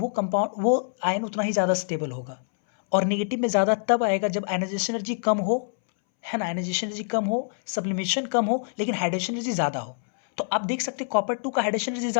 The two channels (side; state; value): right; silent; 61 dB below the other